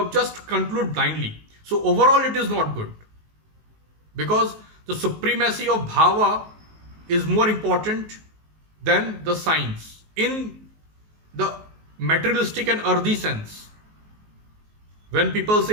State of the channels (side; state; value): left; late; 19 ms